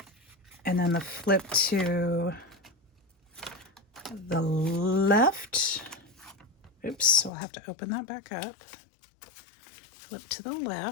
And then the flip to the left. Oops, so I'll have to open that back up. flip to the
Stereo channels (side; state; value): right; drops out; at 7.3 s